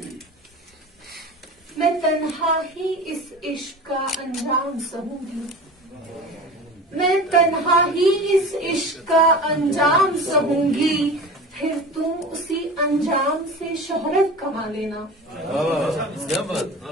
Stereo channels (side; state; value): both; normal; correlation 0.34